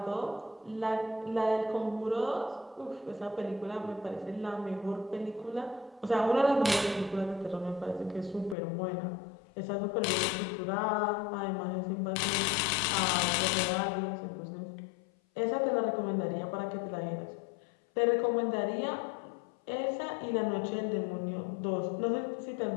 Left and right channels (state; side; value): drops out; right; at 8.6 s